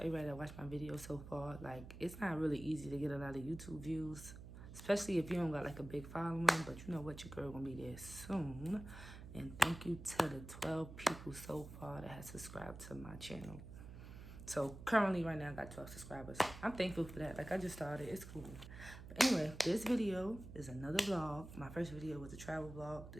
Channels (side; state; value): right; noise; hum, 13 dB below the sound